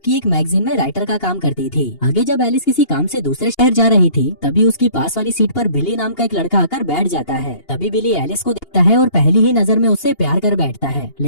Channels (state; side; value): late; right; 2.8 ms